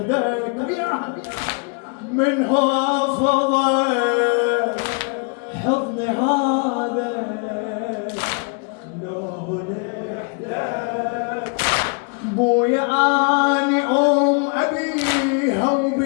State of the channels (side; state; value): right; quieter; 37.6 dB